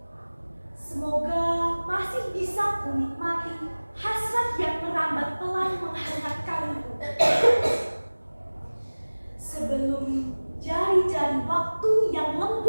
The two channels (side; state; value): both; inverted; correlation -1.00